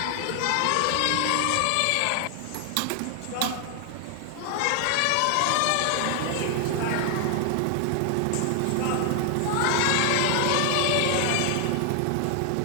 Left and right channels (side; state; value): both; different; correlation 0.00